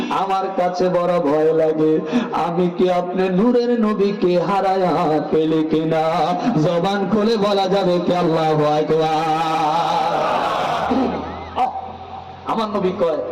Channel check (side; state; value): both; identical; correlation 1.00